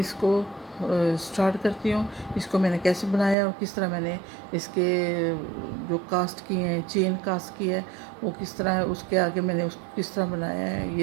स्टार्ट करती हूँ। इसको मैंने कैसे बनाया और किस तरह मैंने इसके जो कास्ट किए हैं, चेन कास्ट की है वो किस तरह है, उसके आगे मैंने उसको किस तरह बनाया है।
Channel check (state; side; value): drops out; left; at 3.4 s